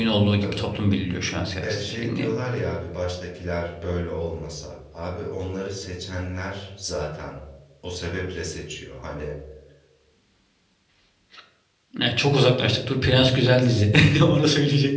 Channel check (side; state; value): both; identical; correlation 1.00